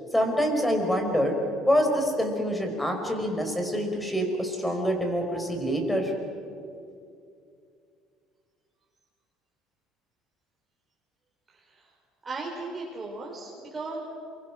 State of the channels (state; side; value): normal; both; correlation 0.74